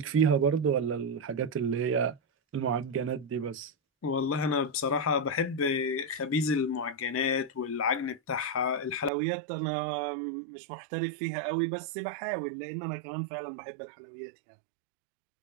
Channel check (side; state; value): left; drops out; at 9.1 s